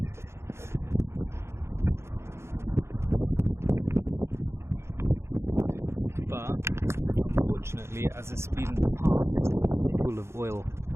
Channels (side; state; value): left; late; 0.13 ms